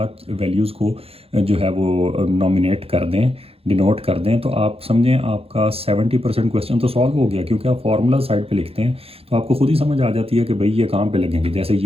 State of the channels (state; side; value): late; left; 0.28 ms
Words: वैल्यूज़ को जो है वो नॉमिनेट कर दें, डिनोट कर दें, तो आप समझें आपका 70% क्वेश्चन तो सॉल्व हो गया, क्योंकि आप फार्मूला साइड पे लिखते हैं तो आपको खुद ही समझ आ जाती है कि भाई ये कहाँ पे लगेंगे। जैसे